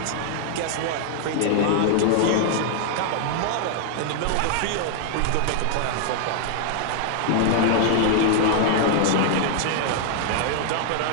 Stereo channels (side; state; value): both; different; correlation 0.00